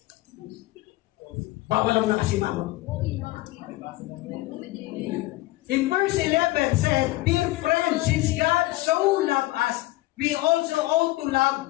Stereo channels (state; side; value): quieter; right; 18.7 dB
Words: Bawal lang nakasimangot. In verse 11 said, dear friends, since God so loved us, we also ought to